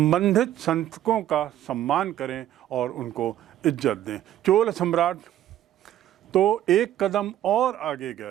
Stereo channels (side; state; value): left; quieter; 12.4 dB